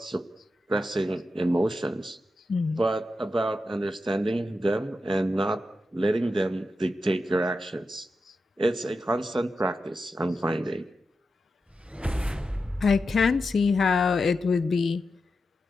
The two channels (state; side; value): normal; both; correlation 0.89